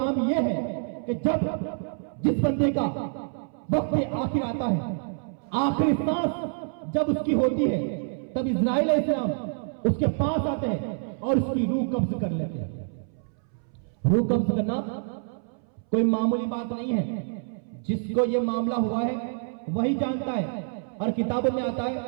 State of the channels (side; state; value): left; silent; 60 dB below the other